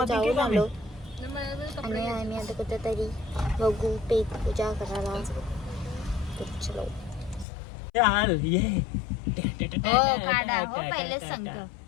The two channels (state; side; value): drops out; right; at 7.5 s